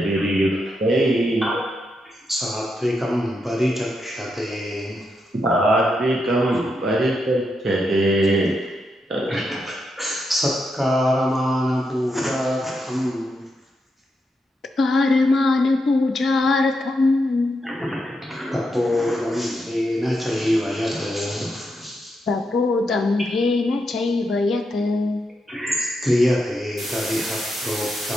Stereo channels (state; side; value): normal; both; correlation 0.83